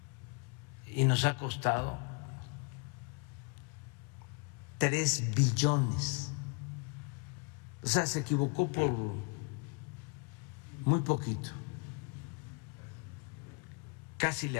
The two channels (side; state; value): right; quieter; 32.6 dB